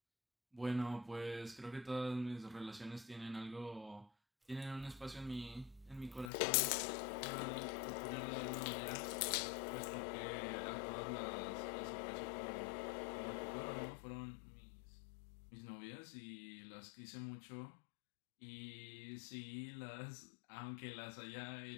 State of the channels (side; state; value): right; drops out; at 6.3 s